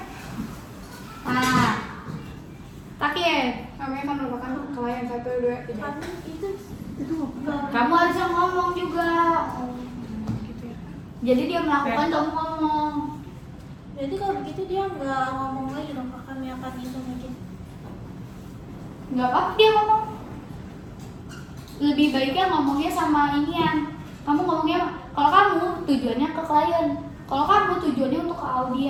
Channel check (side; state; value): both; identical; correlation 1.00